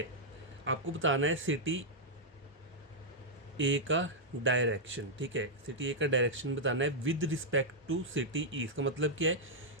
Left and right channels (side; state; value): both; normal; correlation -0.06